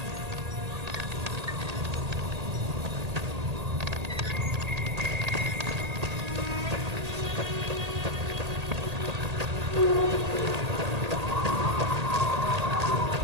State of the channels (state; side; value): late; left; 1.8 ms